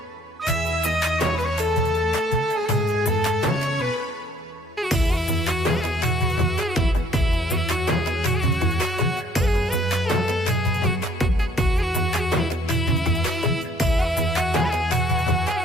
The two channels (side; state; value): both; normal; correlation 0.62